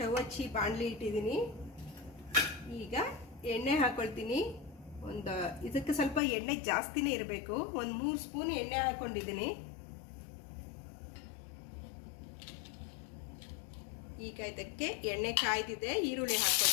ಹಚ್ಚಿ ಬಾಣಲಿ ಇಟ್ಟಿದ್ದೀನಿ. ಈಗ ಎಣ್ಣೆ ಹಾಕ್ಕೊಳ್ತೀನಿ. ಇದಕ್ಕೆ ಸ್ವಲ್ಪ ಎಣ್ಣೆ ಜಾಸ್ತಿನೇ ಇರಬೇಕು. ಒಂದು 3 ಸ್ಪೂನ್ ಎಣ್ಣೆ ಹಾಕ್ಕೊಂಡಿದ್ದೀನಿ. ಈಗ ಇದಕ್ಕೆ ಎಣ್ಣೆ ಕಾಯ್ದಿದೆ, ಈರುಳ್ಳಿ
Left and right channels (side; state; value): right; drops out; at 6.2 s